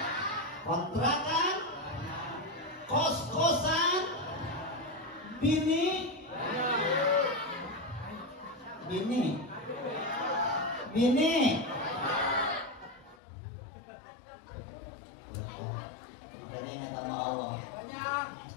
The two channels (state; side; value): drops out; right; at 13.2 s